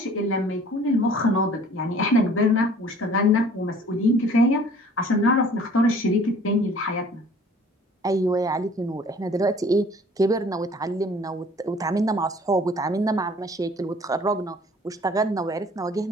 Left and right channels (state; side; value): normal; both; correlation 0.52